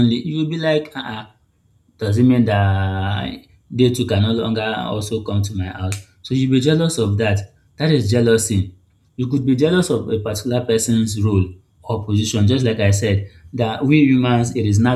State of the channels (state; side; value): identical; both; correlation 1.00